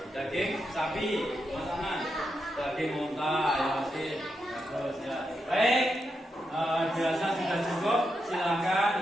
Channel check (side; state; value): both; normal; correlation 0.85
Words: daging sapi, Mas Anan, daging unta, ya masih bagus ya. Baik, biasa sudah cukup. Silakan